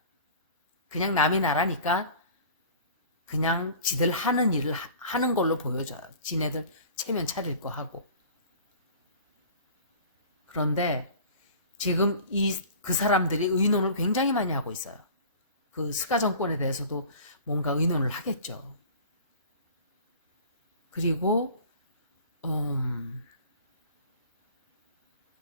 그냥 남이 나라니까 그냥 지들 하는 일을 하는 걸로 보여져요. 지네들 체면 차릴 거 하고. 그런데 지금 그 사람들이 의논을 굉장히 많이 하고 있어요. 그 스가 정권에 대해서도 뭔가 의논을 하겠죠. 그리고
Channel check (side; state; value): both; inverted; correlation -0.43